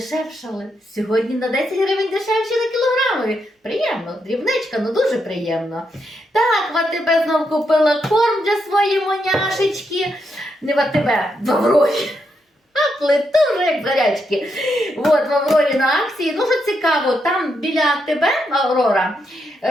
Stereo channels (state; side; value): normal; both; correlation 0.81